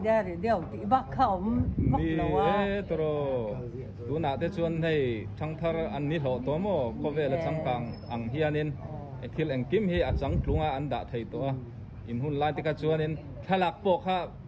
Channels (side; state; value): both; identical; correlation 1.00